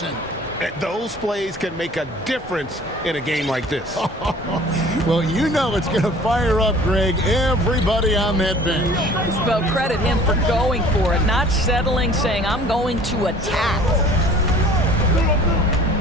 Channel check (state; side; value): normal; both; correlation 0.49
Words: Those plays can make a difference in a game like this. Well, you know it's going to fire up, Greg, everybody on that bench. Well, credit him for going for it, not settling, saying, I'm going to attack.